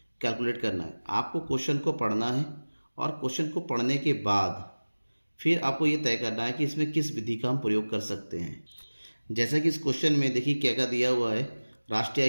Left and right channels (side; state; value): both; inverted; correlation -1.00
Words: कैलकुलेट करना है। आपको क्वेश्चन को पढ़ना है और क्वेश्चन को पढ़ने के बाद फिर आपको ये तय करना है कि इसमें किस विधि का हम प्रयोग कर सकते हैं। जैसा कि इस क्वेश्चन में देखिए क्या क्या दिया हुआ है। राष्ट्रीय